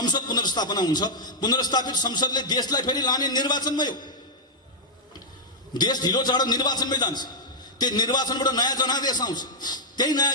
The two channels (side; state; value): both; normal; correlation -0.06